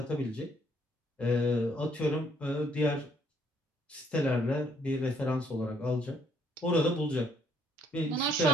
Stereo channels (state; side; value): normal; both; correlation 0.67